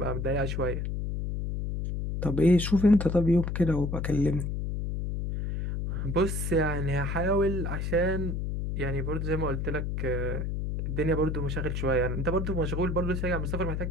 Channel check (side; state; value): left; noise; hum, 2 dB below the sound